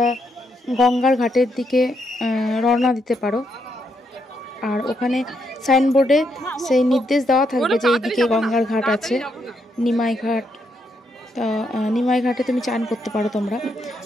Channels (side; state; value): both; normal; correlation 0.78